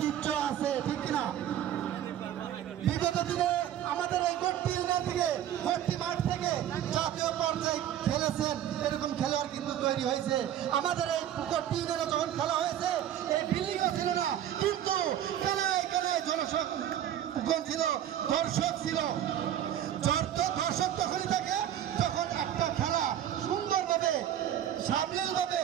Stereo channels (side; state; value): left; quieter; 11.0 dB